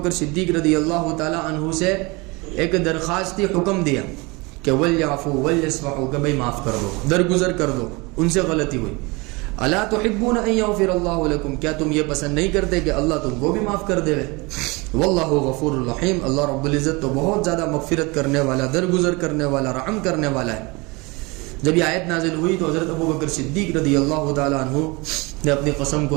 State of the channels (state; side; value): quieter; left; 25.9 dB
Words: صدیق رضی اللہ تعالی عنہ سے ایک درخواستی حکم دیا کہ ولیعفوا ولیصفحوا، کہ بھائی معاف کر دو، درگزر کر دو، ان سے غلطی ہوئی۔ الا تحبون ان یغفر اللہ لکم، کیا تم یہ پسند نہیں کرتے کہ اللہ تم کو بھی معاف کر دے؟ واللہ غفور الرحیم، اللہ رب العزت تو بہت زیادہ مغفرت کرنے والا، درگزر کرنے والا، رحم کرنے والا ہے۔ جب یہ آیت نازل ہوئی تو حضرت ابو بکر صدیق رضی اللہ تعالی عنہ نے اپنی قسم